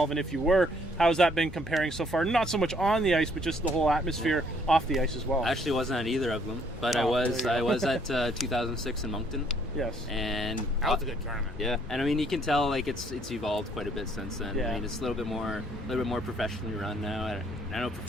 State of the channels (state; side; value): normal; both; correlation 0.65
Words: and if you were, how has that been comparing so far? Not so much on the ice, but just the whole atmosphere off the ice as well. I actually wasn't at either of them, but I was at 2006 in Moncton. Yes. And that was a good tournament. Yeah, and you can tell it's evolved quite a bit since then. Yeah. It's a little bit more professionally run now. I know